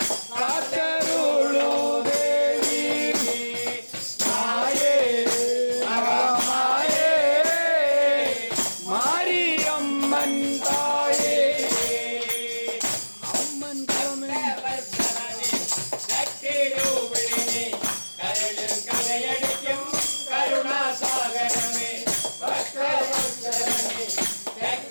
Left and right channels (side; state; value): both; inverted; correlation -1.00